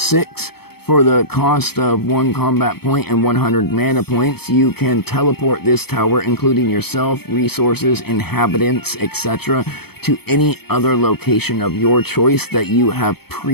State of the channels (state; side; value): late; right; 0.96 ms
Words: For the cost of 1 combat point and 100 mana points, you can teleport this tower, including yourself, resources, inhabitants, etc., to any other location of your choice that you have